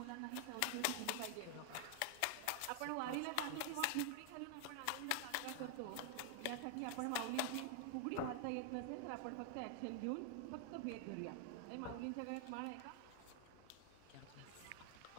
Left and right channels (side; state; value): both; different; correlation 0.00